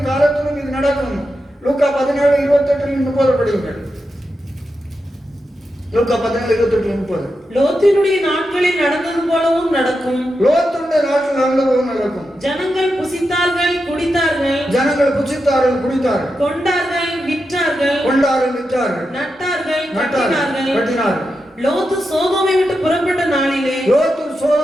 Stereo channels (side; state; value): both; normal; correlation 0.88